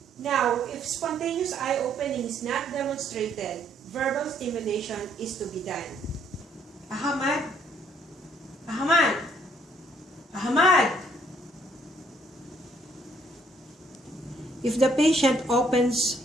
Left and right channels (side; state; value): both; normal; correlation 0.66